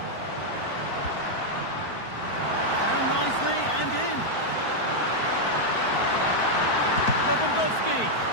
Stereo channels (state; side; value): late; right; 4.5 ms